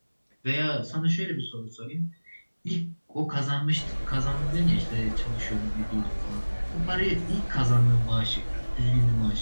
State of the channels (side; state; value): both; inverted; correlation -1.00